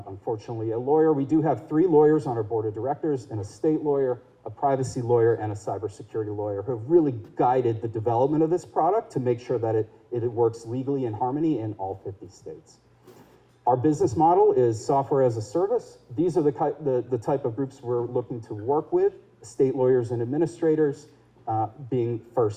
unfortunately, a lawyer, we do have 3 lawyers on our board of directors, an estate lawyer, a privacy lawyer, and a cybersecurity lawyer who have really guided the development of this product to make sure that it works legally in harmony in all 50 states. Our business model is software as a service. These are the type of groups we're looking to work with, estate lawyers and administrators, being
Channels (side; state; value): both; identical; correlation 1.00